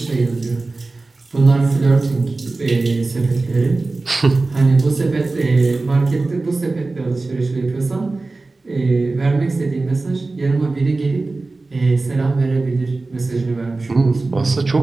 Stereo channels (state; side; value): quieter; left; 3.4 dB